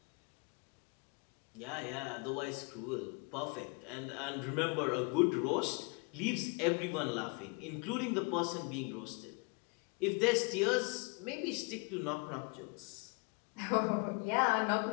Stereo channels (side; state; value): right; quieter; 32.9 dB